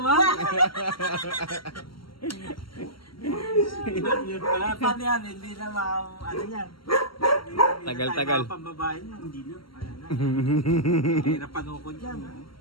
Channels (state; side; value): late; right; 0.74 ms